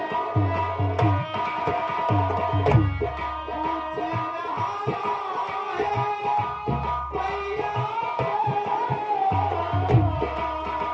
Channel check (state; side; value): identical; both; correlation 1.00